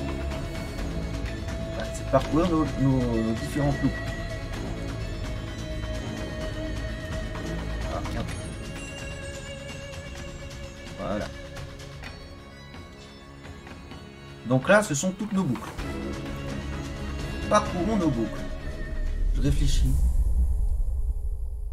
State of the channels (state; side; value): identical; both; correlation 1.00